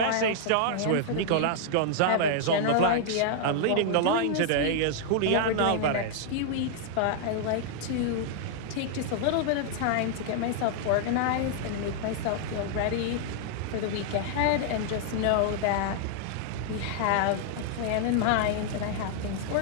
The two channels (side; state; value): both; different; correlation -0.01